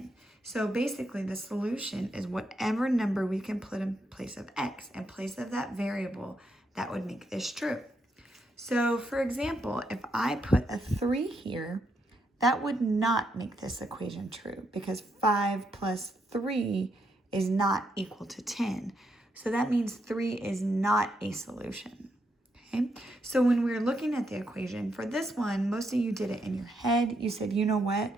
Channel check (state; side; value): normal; both; correlation 0.79